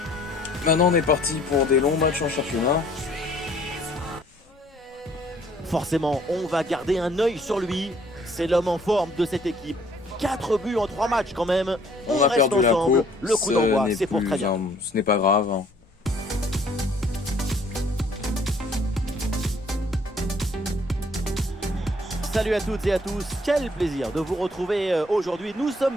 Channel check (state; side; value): normal; both; correlation 0.60